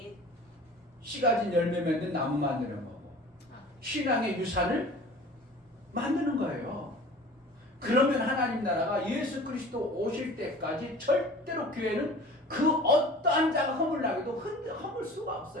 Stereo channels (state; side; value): normal; both; correlation 0.43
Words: 씨 가진 열매 맺는 나무 만드는 거고 신앙의 유산을 만드는 거예요. 그러면 하나님 나라가 예수 그리스도 오실 때까지 절대로 교회는 그 어떠한 자가 허물나게도 허물 수가